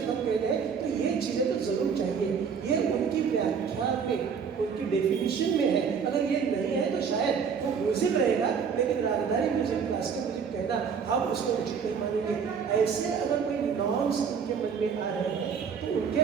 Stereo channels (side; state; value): left; quieter; 6.5 dB